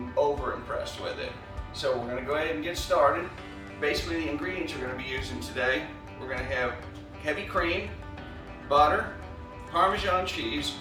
over impressed with it. So we're going to go ahead and get started. Basically the ingredients we're going to be using today, we're going to have heavy cream, butter, Parmesan cheese,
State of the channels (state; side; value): identical; both; correlation 1.00